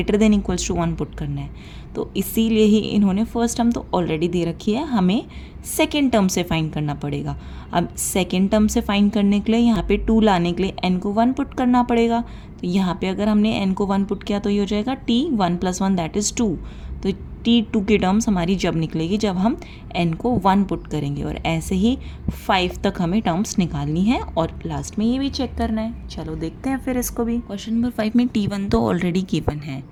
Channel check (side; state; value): both; identical; correlation 1.00